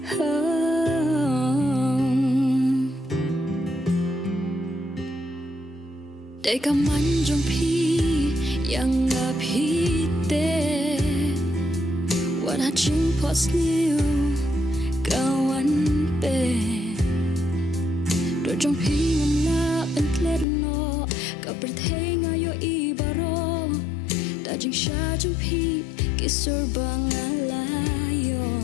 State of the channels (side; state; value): right; drops out; at 20.5 s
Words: để cả man jong pi yang pi te what I dream was new kawan pe đôi trong khi ngâm na bên klet no cả bờ thế ngay yo i baro đã chính xa trong khi kisur bang alayo